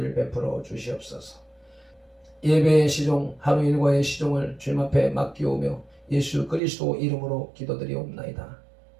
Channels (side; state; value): left; drops out; at 6.6 s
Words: 베풀어 주시옵소서. 예배의 시종, 하루 일과의 시종을 주님 앞에 맡기오며 예수 그리스도 이름으로 기도드리옵나이다.